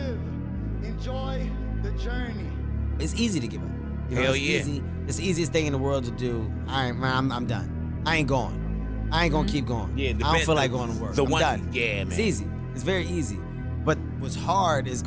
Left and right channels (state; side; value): identical; both; correlation 1.00